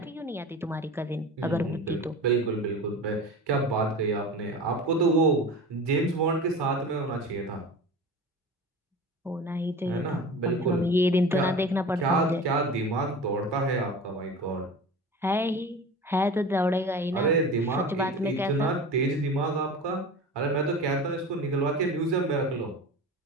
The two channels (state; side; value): normal; both; correlation 0.34